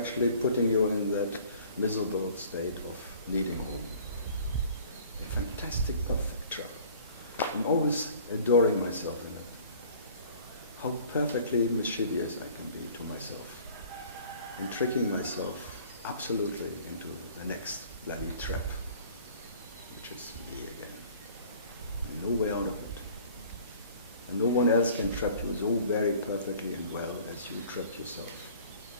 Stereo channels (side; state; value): both; inverted; correlation -0.50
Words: putting you in that miserable state of needing home. A fantastic, perfect trap. I'm always adoring myself in it. How perfectly mischievous I can be to myself. And tricking myself absolutely into the next bloody trap, which is me again. And no way out of it. And no one else can trap you so very perfectly and well as you trap yourself.